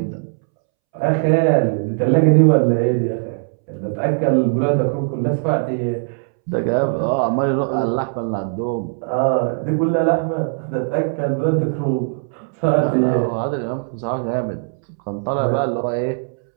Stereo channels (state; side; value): silent; left; 66 dB below the other